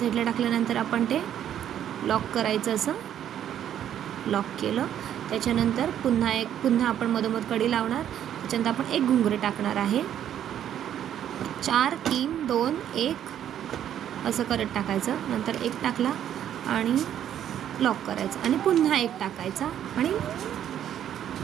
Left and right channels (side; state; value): left; quieter; 10.3 dB